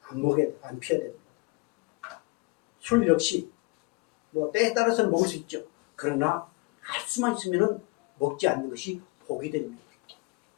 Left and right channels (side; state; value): right; quieter; 25.2 dB